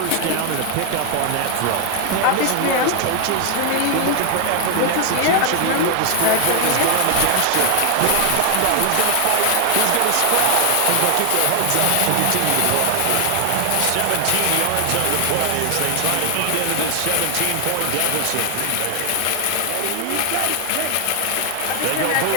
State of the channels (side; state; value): both; different; correlation 0.00